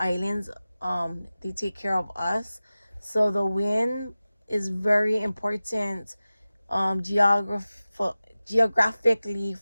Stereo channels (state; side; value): inverted; both; correlation -0.96